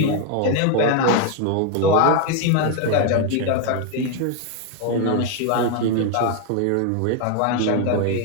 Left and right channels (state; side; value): different; both; correlation 0.01